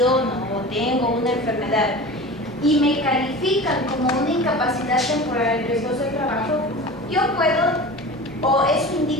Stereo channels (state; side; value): normal; both; correlation 0.34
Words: o tengo una enfermedad y me califican como una incapacidad temporal en riesgos del trabajo, yo puedo, o eso